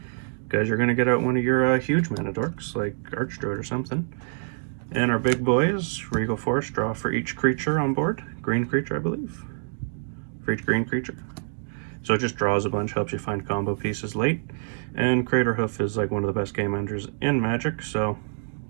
because you're going to get out one of your huge mana dorks, like Archdruid or something. And our big boys, Regal Force, draw for each creature on board. Green creature, I believe. For each green creature. So it just draws a bunch, helps you find combo pieces late. And Crater Hoof is like one of the best game enders in Magic, so,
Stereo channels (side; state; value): left; silent; digital silence